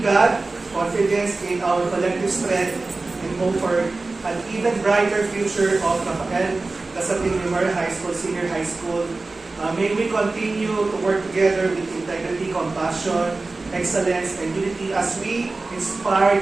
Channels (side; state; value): left; quieter; 3.5 dB